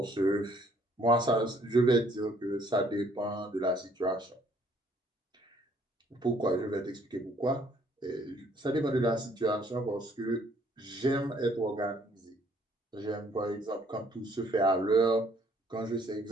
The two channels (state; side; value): normal; both; correlation 0.63